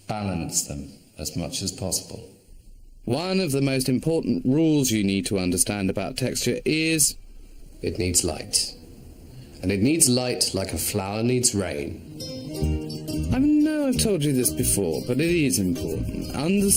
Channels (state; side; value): identical; both; correlation 1.00